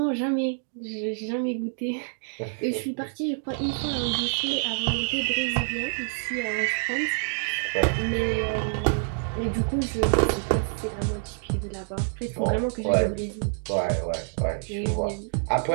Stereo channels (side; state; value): left; silent; digital silence